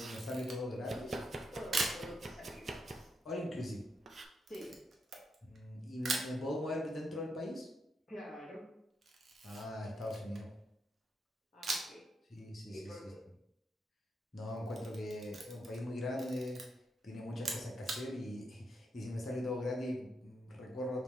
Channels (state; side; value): normal; both; correlation 0.81